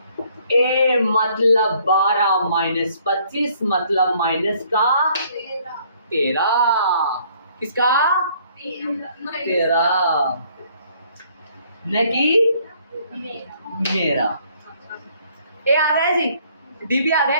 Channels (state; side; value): inverted; both; correlation -0.63